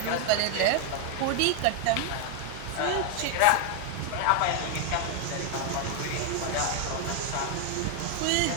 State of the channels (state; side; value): different; both; correlation 0.00